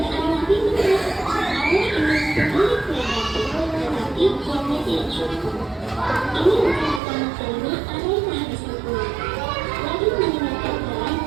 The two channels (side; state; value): left; drops out; at 7.0 s